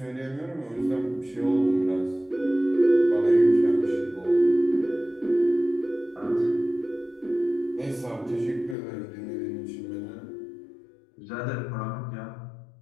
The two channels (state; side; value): drops out; right; at 8.8 s